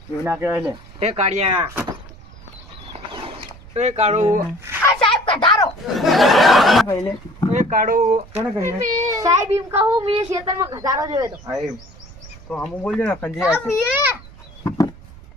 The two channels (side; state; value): right; noise; rumble, 20 dB below the sound